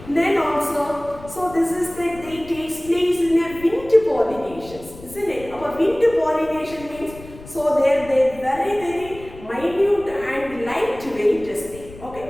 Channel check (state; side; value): noise; left; rumble, 17 dB below the sound